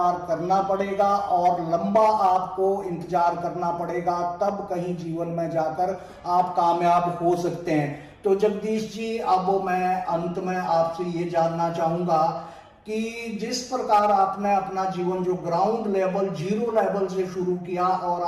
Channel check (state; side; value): identical; both; correlation 1.00